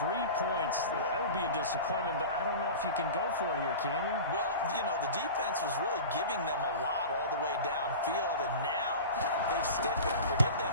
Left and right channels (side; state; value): both; inverted; correlation -0.33